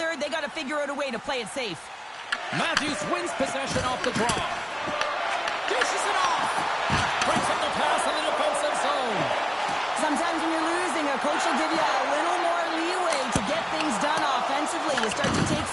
They got to figure out a way to play it safe. Matthews wins possession off the draw. Dishes it off. Breaks up the pass in the defensive zone. Sometimes when you're losing, a coach will give you a little more leeway to get things done offensively. You start to take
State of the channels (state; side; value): identical; both; correlation 1.00